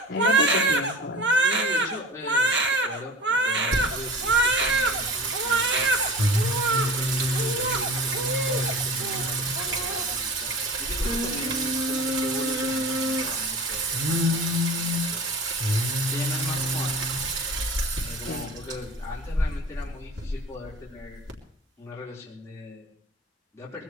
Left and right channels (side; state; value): both; normal; correlation 0.37